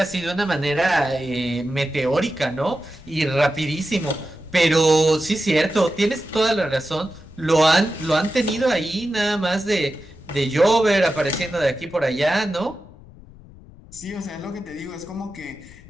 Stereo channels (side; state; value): left; noise; rumble, 21 dB below the sound